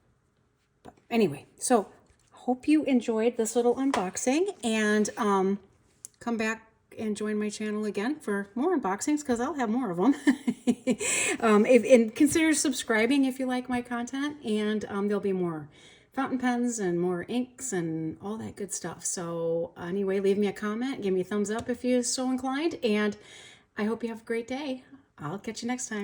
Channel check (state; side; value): identical; both; correlation 1.00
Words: But anyway, so hope you enjoyed this little unboxing, and come back and join my channel again for more unboxings, because I'll have more of them. And consider subscribing if you like my content, and there'll be more fountain pens and more inks and all that good stuff. So anyway, leave me a comment, give me a thumbs up if you're so inclined, and I hope you have a great day. I'll catch you next